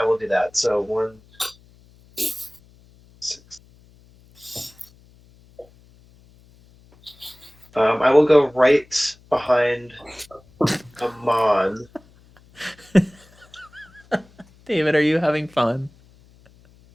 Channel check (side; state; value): left; noise; hum, 28 dB below the sound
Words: will do that. So 1, 6. I will go right behind Amon. David, are you having fun?